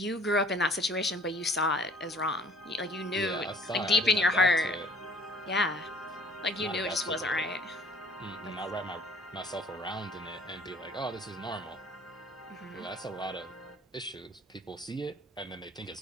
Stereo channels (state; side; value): normal; both; correlation 0.53